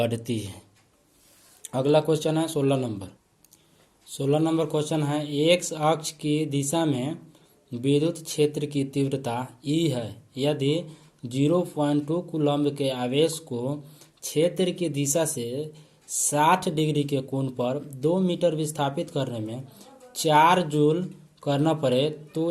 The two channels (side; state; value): both; identical; correlation 1.00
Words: है। अगला क्वेश्चन है 16 नंबर। 16 नंबर क्वेश्चन है एक्स अक्ष की दिशा में विद्युत क्षेत्र की तीव्रता E है। यदि 0.2 कूलम्ब के आवेश को क्षेत्र की दिशा से 60 डिग्री के कोण पर 2 मीटर विस्थापित करने में 4 जूल करना पड़े